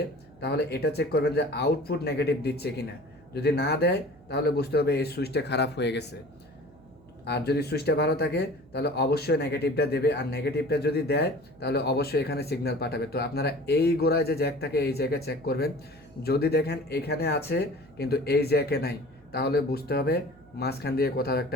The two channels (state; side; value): noise; right; hum, 26 dB below the sound